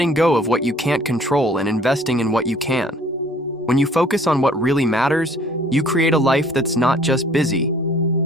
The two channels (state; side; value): normal; both; correlation 0.55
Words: go of what you can't control and investing in what you can. When you focus on what really matters, you create a life that's not just busy,